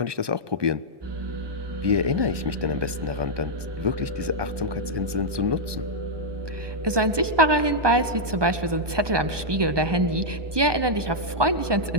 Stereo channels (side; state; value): left; late; 1.2 ms